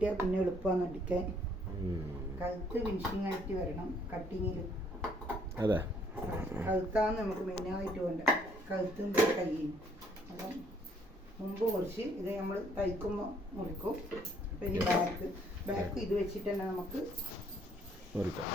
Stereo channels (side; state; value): both; normal; correlation 0.65